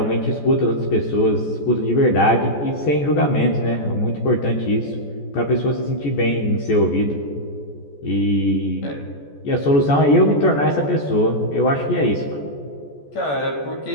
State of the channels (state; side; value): late; right; 14 ms